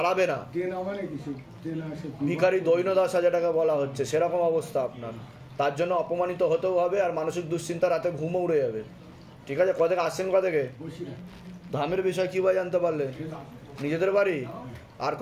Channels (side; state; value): both; identical; correlation 1.00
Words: না, ভিখারি দৈন্যদশা যেটাকে বলা হচ্ছে, সেরকম অবস্থা আপনার। তার জন্য অপমানিত হতেও হবে, আর মানসিক দুশ্চিন্তা, রাতে ঘুমও উড়ে যাবে, ঠিক আছে। কোথা থেকে আসছেন? কোথা থেকে? ধামের বিষয় কি ভাই জানতে পারলেন? নিজেদের বাড়ি? আর